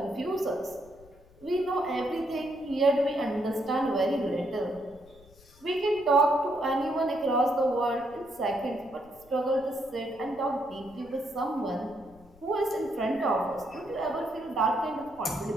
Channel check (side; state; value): left; noise; rumble, 25 dB below the sound